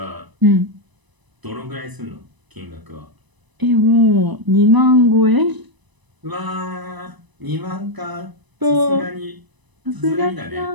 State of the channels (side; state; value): left; late; 1.0 ms